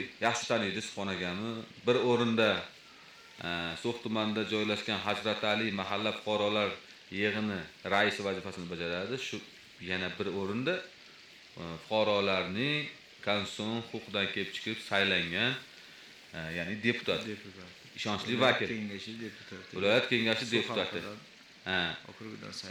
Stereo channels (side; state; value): both; identical; correlation 1.00